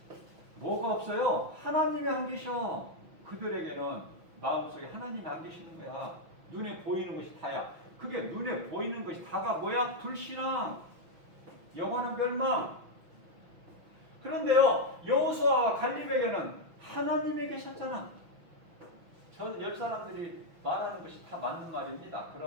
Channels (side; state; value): left; late; 6.1 ms